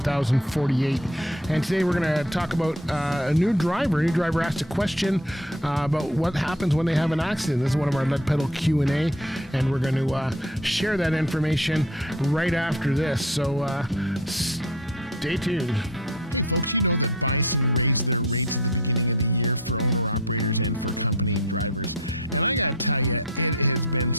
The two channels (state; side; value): normal; both; correlation 0.42